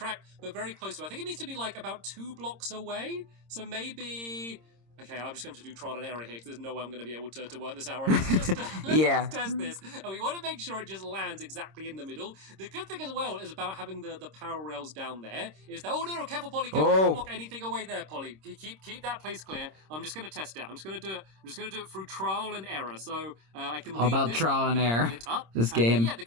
but very close to it. I think it needs to be like about 2 blocks away. So maybe... Okay, I'm just going to do trial and error here because there's no way I'm going to be able to work this out. Let's just test this. And we want to make sure it just lands exactly in the middle. The good thing as well is about having the power rails down there is that... Oh, no, careful, Polly. Don't block anything away there, Polly. Keep that place clear. I'm just going to test it. I'm just going to do it through trial and error. So I can leave about this trial and error. This game. Yeah, the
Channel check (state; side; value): late; left; 26 ms